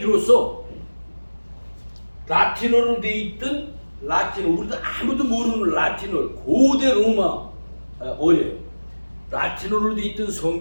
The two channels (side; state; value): both; inverted; correlation -1.00